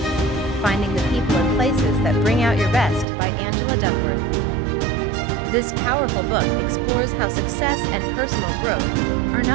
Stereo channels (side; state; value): left; drops out; at 3.1 s